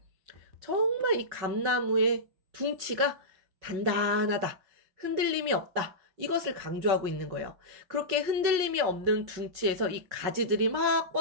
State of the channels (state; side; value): late; left; 5.4 ms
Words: 정말 이 감나무의 둥치가 단단하다. 흔들림이 없다. 이것을 강조하고 있는 거예요. 그렇게 흔들림이 없는 둥치에서 이 가지들이 막